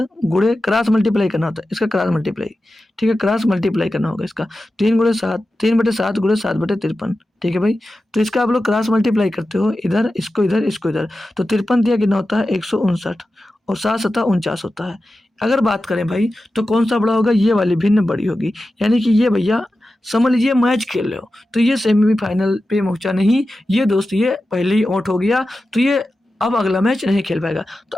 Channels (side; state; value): both; normal; correlation 0.93